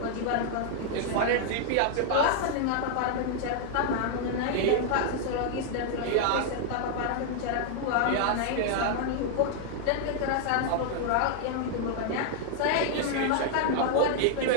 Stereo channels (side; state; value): both; different; correlation 0.00